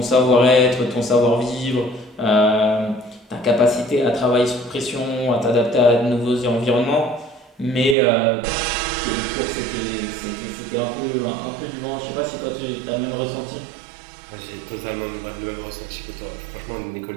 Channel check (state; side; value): drops out; left; at 8.0 s